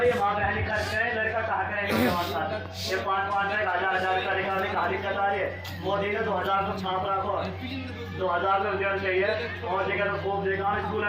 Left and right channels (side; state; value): both; identical; correlation 1.00